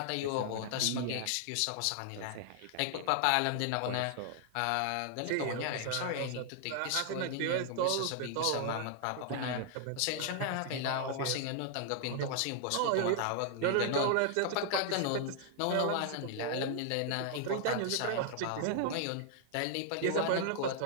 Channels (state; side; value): different; both; correlation 0.00